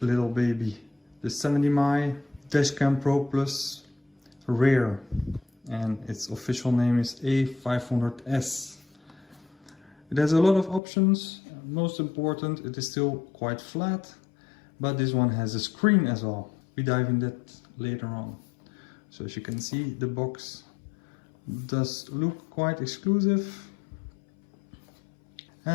little baby, the 70mm dashcam ProPLus Rare, and its official name is A500S. It has a lot of options. Most important, it is still quite flat, but this one has a screen as well. We dive in that later on. So as you can see, the box does look quite exclusive.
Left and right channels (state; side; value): drops out; right; at 10.8 s